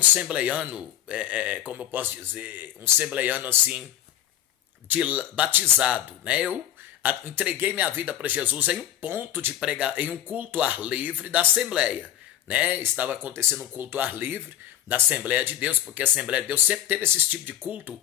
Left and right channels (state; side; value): quieter; right; 11.8 dB